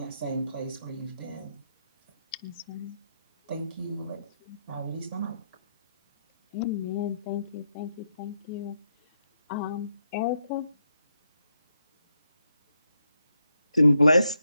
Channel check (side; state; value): both; inverted; correlation -0.81